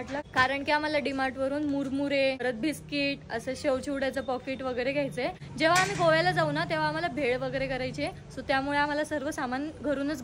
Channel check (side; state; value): both; identical; correlation 1.00